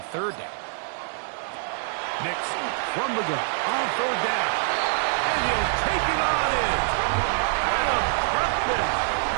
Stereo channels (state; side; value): silent; left; digital silence